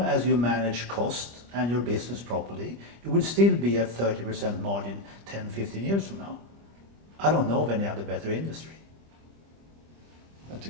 as you manage cost and your business properly, you will still be at 30% margin 10-15 years from now. I don't know of any other better industry. That's a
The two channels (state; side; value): late; left; 25 ms